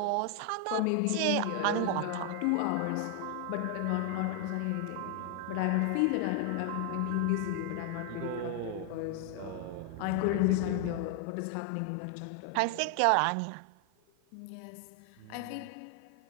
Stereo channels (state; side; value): different; both; correlation 0.00